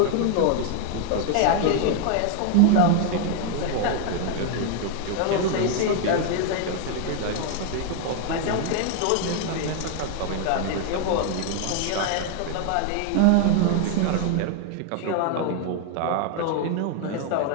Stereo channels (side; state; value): both; different; correlation 0.00